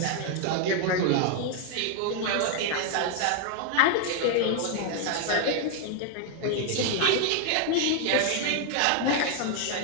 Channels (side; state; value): both; different; correlation 0.00